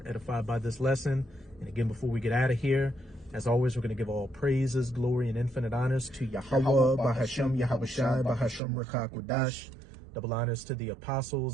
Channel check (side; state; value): left; drops out; at 8.6 s